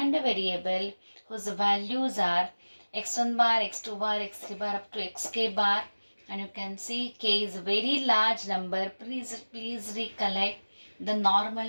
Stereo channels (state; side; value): inverted; both; correlation -1.00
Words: a variable whose values are x1 bar, x2 bar, x3 bar up to xk bar, and you can see k is a very large number. Please recollect the